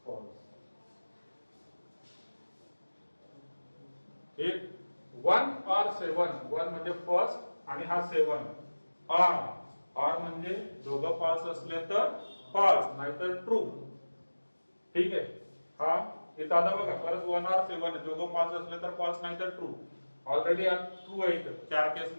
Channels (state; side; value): inverted; both; correlation -1.00